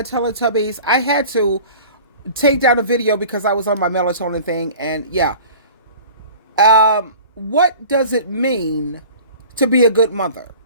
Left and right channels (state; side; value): inverted; both; correlation -0.42